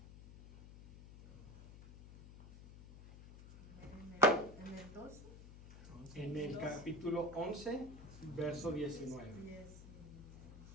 En el 12. En el capítulo 11, verso 19.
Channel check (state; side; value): noise; left; hum, 16 dB below the sound